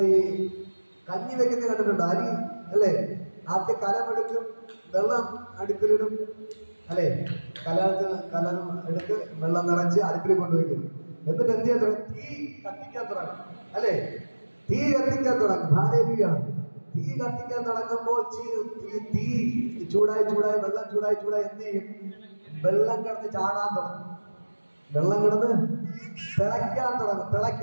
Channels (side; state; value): both; inverted; correlation -1.00